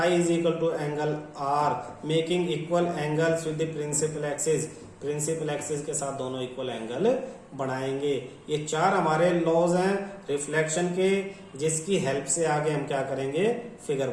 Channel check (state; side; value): identical; both; correlation 1.00